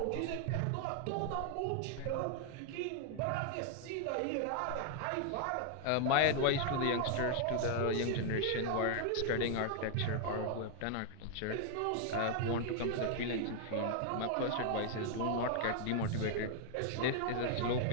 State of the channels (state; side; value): different; both; correlation 0.00